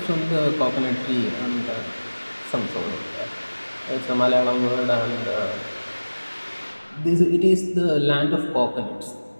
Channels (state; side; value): inverted; both; correlation -1.00